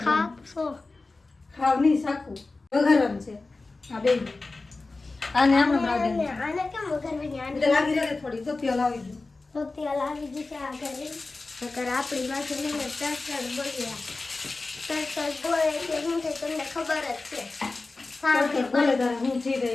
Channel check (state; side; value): quieter; right; 3.5 dB